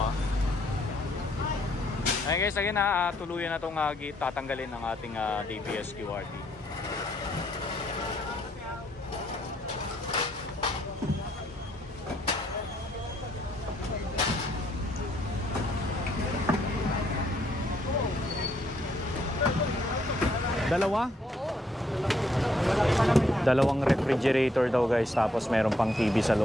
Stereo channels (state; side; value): normal; both; correlation 0.70